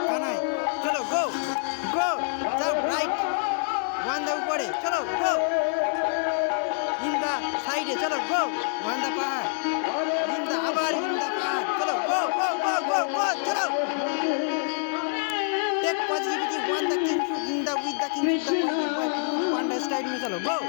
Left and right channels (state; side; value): silent; right; 61 dB below the other